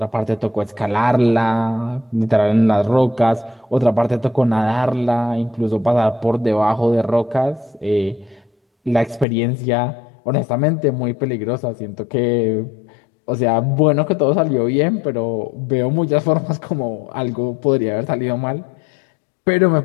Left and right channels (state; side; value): drops out; right; at 9.2 s